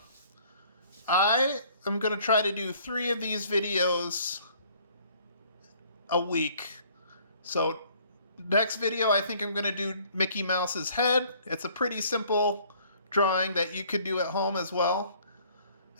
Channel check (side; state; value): both; inverted; correlation -0.58